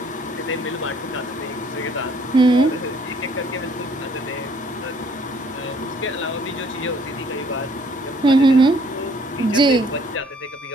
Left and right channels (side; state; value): both; normal; correlation 0.62